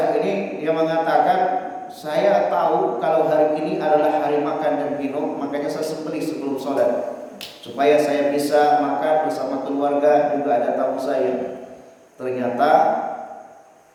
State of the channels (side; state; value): both; identical; correlation 1.00